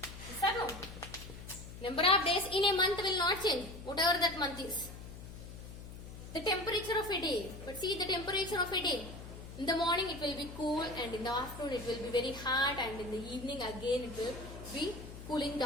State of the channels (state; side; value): noise; left; hum, 13 dB below the sound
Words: Yes or no? Number of days in a month will not change, whatever that month is. The temperature of a day. But see the temperature of a day. In the morning it will be cool and in the afternoon it will be very hot and in the evening again it will be cooling